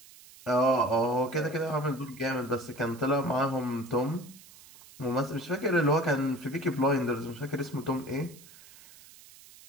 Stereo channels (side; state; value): right; noise; hiss, 21 dB below the sound